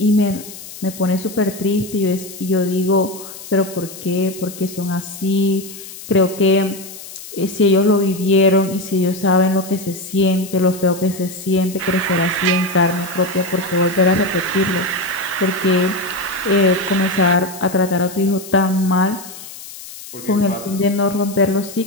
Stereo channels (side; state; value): left; noise; hiss, 14 dB below the sound